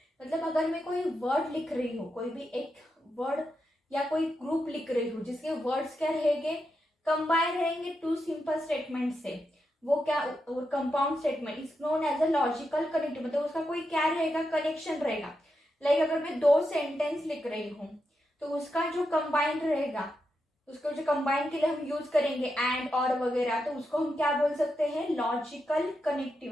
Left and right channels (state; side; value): normal; both; correlation 0.86